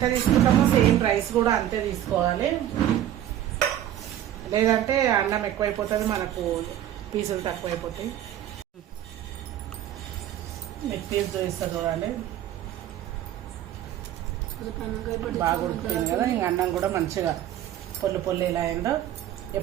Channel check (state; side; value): quieter; left; 11.8 dB